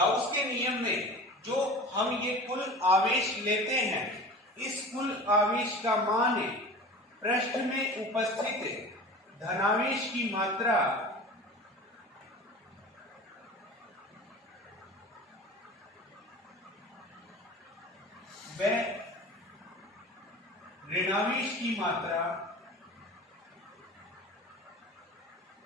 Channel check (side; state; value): both; normal; correlation 0.37